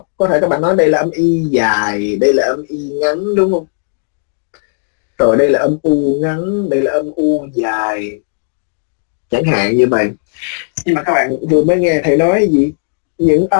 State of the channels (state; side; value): silent; right; 70 dB below the other